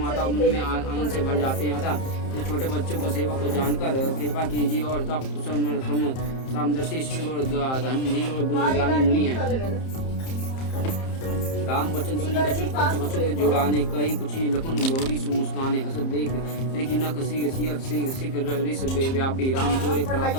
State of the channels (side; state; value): right; late; 30 ms